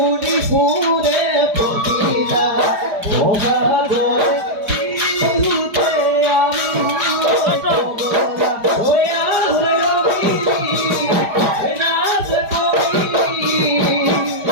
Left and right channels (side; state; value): left; late; 4.9 ms